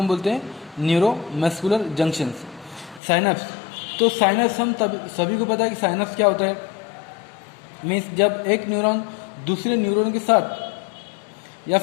बोलते हैं न्यूरोमस्कुलर जंक्शंस, साइनैप्स. तो साइनस हम सभी को पता है कि साइनस क्या होता है, मीन्स जब एक न्यूरॉन दूसरे न्यूरॉन के साथ या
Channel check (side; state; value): right; drops out; at 3.0 s